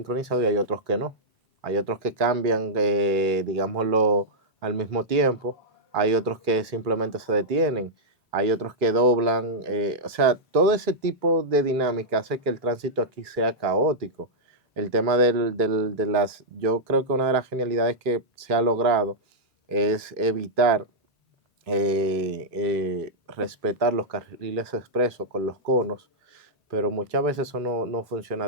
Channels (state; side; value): normal; both; correlation -0.09